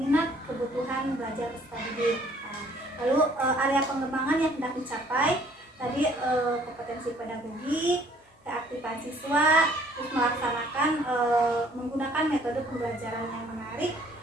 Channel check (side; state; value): both; normal; correlation 0.59